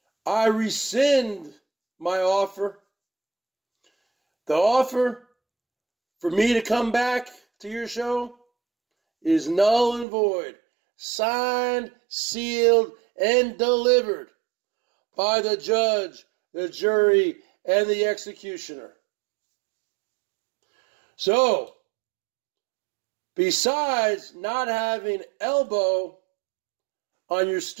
I rescind my offer. The offer for me to come back to your show is null and void. Signed, sealed, and delivered by the judge, the jury, and the executioner. So, besides not having elbow on your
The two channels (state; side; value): drops out; left; at 10.1 s